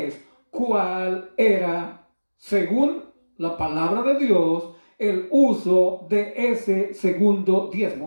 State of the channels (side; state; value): both; inverted; correlation -1.00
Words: cuál era, según la palabra de Dios, el uso de ese segundo